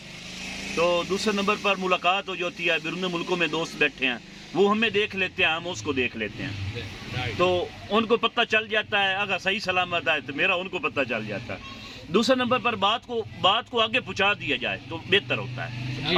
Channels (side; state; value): both; identical; correlation 1.00